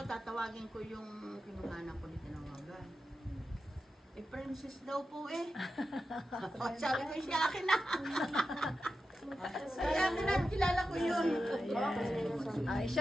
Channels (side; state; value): both; normal; correlation 0.91